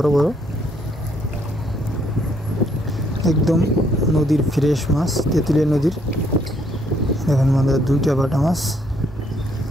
বড়, একদম নদীর ফ্রেশ মাছ, তেঁতুলিয়া নদীর। দেখুন আমাদের দুইটা বাটা মাছ।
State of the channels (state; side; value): normal; both; correlation 0.69